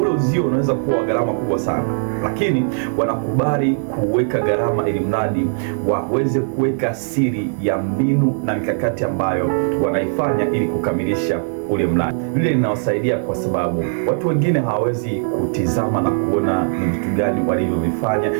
uzio unaweza kuwa gharama kubwa sana, lakini wanakubali kuweka gharama ili mradi waweze kuweka siri ya mbinu na mikakati ambayo wanaifanya ili kukamilisha ule mradi. Lile linawasaidia kwa sababu watu wengine hawawezi kutizama na kuona ni vitu gani walivyovifanya.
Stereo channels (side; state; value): left; silent; digital silence